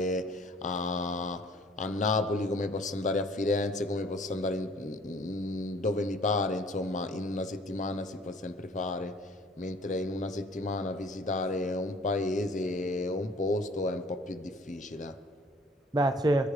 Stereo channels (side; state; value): both; normal; correlation 0.54